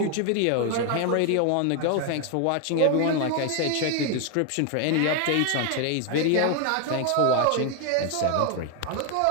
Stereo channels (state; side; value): different; both; correlation 0.01